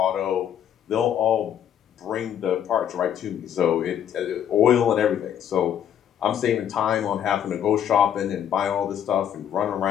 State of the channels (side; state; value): right; quieter; 9.6 dB